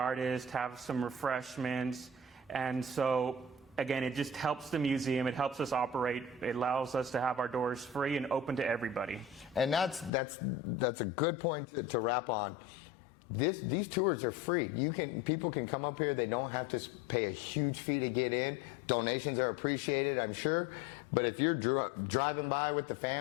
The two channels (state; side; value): drops out; right; at 10.1 s